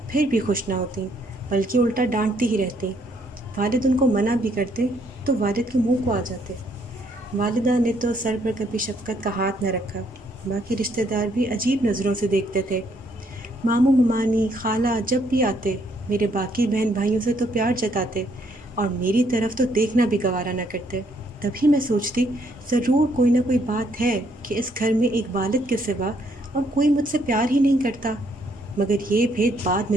پھر بھی خوش نہ ہوتیں، بلکہ الٹا ڈانٹتی ہی رہتیں۔ والد ان کو منع بھی کرتے تو والد کے منہ کو آ جاتے۔ والدہ نے تو سر پر کبھی شفقت کا ہاتھ نہ رکھا، باقی رشتہ دار بھی عجیب نظروں سے دیکھتے تھے۔ ماموں ممانی خالہ جب بھی آتے میرے باقی بہن بھائیوں سے تو پیار جتاتے اور میری طرف تو دیکھنا بھی گوارا نہ کرتے۔ تبھی میں سوچتی، ضرور کوئی نہ کوئی بات ہے کہ اس گھر میں ایک والد کے سوا اور کوئی مجھ سے پیار ہی نہیں کرتا۔ مگر یہ بھید بعد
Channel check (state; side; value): normal; both; correlation 0.69